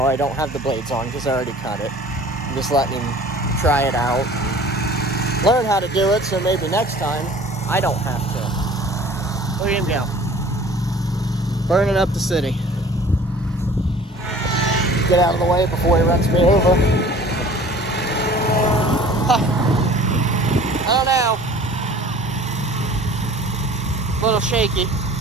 I don't have the blades on because I already cut it. I'm just letting him try it out and learn how to do it, so maybe next time I don't have to. Look at him go. Burning up the city. Get out of the way before he runs me over. I don't know. A little shaky.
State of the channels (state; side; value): normal; both; correlation 0.47